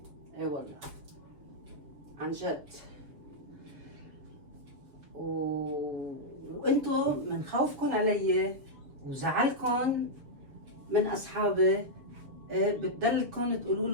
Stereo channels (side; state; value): left; late; 7.1 ms